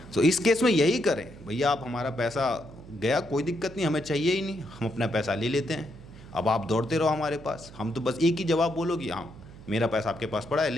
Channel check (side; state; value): right; noise; hum, 18 dB below the sound